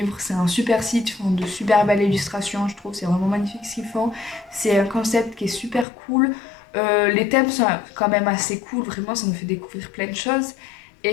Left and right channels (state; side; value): drops out; right; at 5.9 s